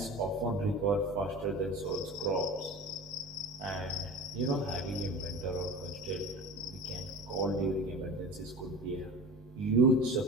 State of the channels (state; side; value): normal; both; correlation 0.34